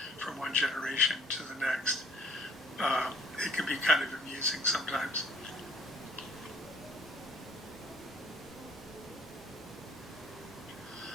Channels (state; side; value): normal; both; correlation 0.58